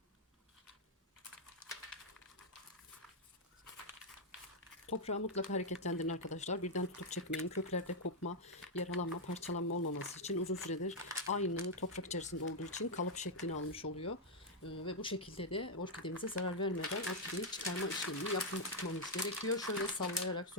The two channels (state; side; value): normal; both; correlation -0.01